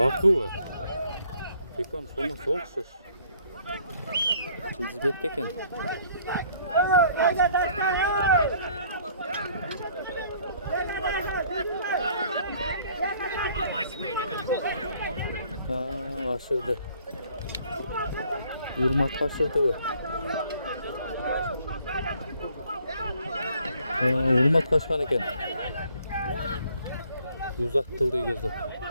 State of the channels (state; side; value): inverted; both; correlation -0.61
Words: Pekon sonu soğuksuş. Yıldızbek eken. Aşırdı. Urmat aşırdı bu. Urmat kaçkan eken. Uzattıldı gözüm.